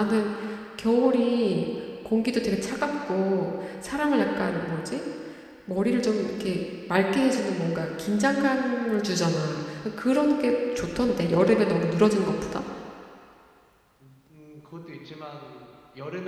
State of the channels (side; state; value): both; identical; correlation 1.00